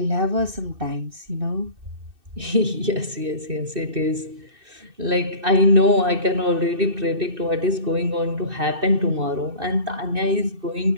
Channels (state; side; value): late; left; 2.6 ms